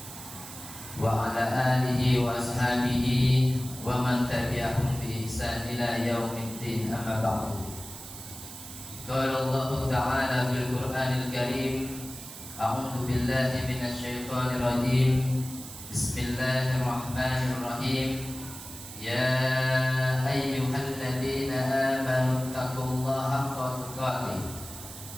wa ala alihi wa ashabihi wa man tabi'ahum bi ihsan ila yaumiddin, amma ba'du. Qala Allah ta'ala fil Qur'anil Karim, a'udzu billahi minasy syaithanir rajim. Bismillahirrahmanirrahim. Ya ayyuhalladzina amanu taqullaha haqqa tuqatih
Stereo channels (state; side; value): noise; right; hiss, 13 dB below the sound